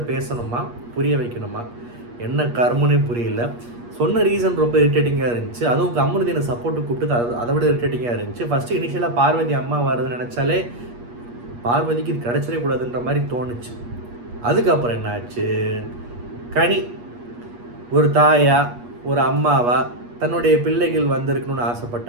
பேசணுமா, புரிய வைக்கணுமா? என்ன கர்மனே புரியல. சொன்ன ரீசன் ரொம்ப இரிட்டேட்டிங்காக இருந்துச்சு. அதுவும் அமிர்தினை சப்போர்ட்டு கூப்பிட்டு அதை விட இரிட்டேட்டிங்காக இருந்துச்சு. ஃபஸ்ட்டு இனிஷியலாக பார்வதி அம்மா வருதுன்னு நினச்சாலே பார்வதிக்கு இது கிடச்சிடவே கூடாதுன்ற மாதிரி தோணுச்சு. அதுக்கப்புறம் என்ன ஆச்சு, கனி ஒரு தாயா ஒரு அம்மாவா தன்னுடைய பிள்ளைகள் வந்திருக்கணும்னு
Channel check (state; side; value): late; left; 8.4 ms